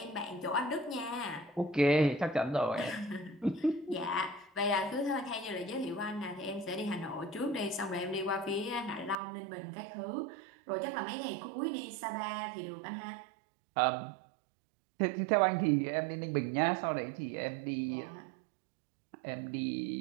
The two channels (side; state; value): left; drops out; at 9.2 s